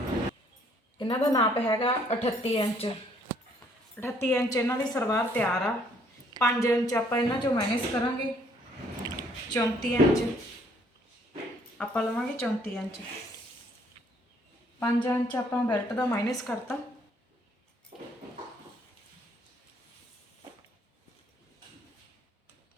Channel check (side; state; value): both; normal; correlation 0.64